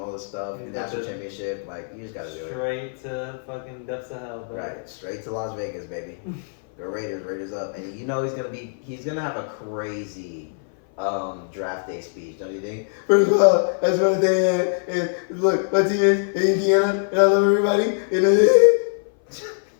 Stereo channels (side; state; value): right; silent; 58 dB below the other